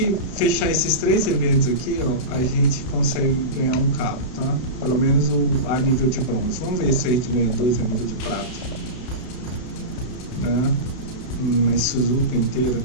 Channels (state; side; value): late; right; 31 ms